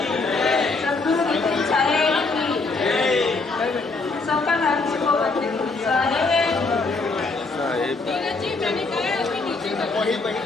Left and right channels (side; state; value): right; quieter; 3.8 dB